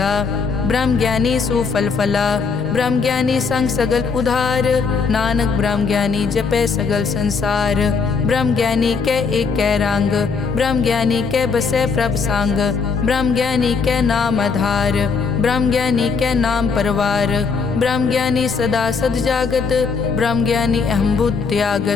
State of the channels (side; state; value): right; quieter; 5.1 dB